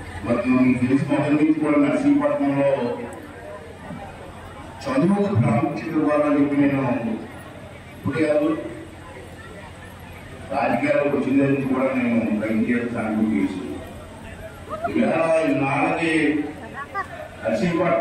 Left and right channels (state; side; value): identical; both; correlation 1.00